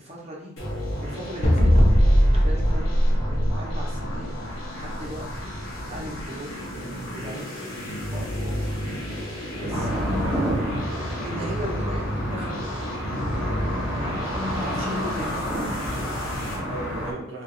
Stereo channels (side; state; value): both; normal; correlation 0.84